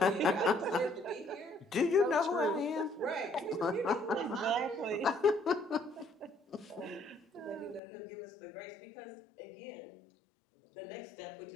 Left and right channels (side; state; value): right; drops out; at 7.8 s